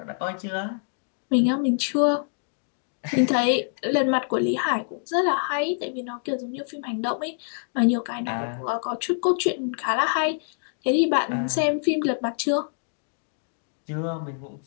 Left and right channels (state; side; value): silent; right; digital silence